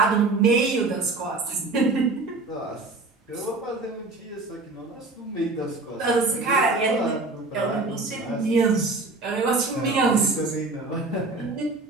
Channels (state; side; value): quieter; left; 3.4 dB